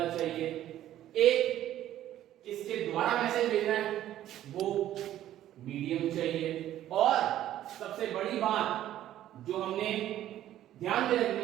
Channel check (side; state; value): left; quieter; 12.6 dB